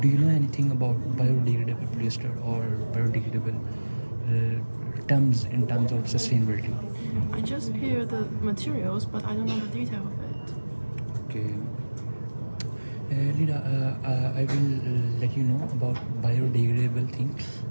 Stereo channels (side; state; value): both; inverted; correlation -1.00